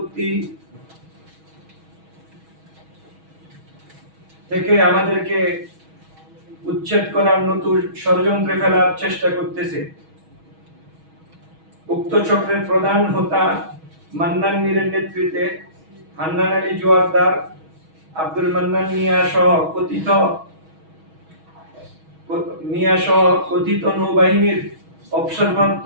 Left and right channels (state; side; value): late; left; 6.3 ms